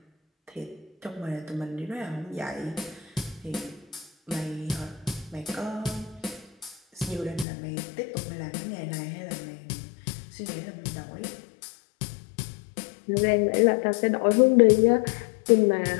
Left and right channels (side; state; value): right; drops out; at 7.5 s